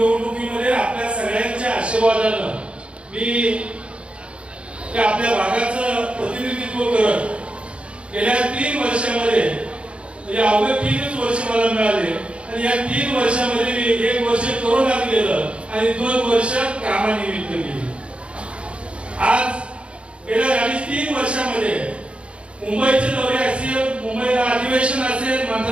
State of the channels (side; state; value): left; late; 0.059 ms